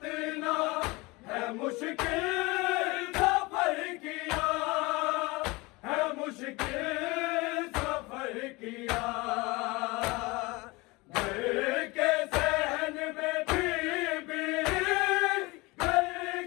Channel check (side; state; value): right; quieter; 24.0 dB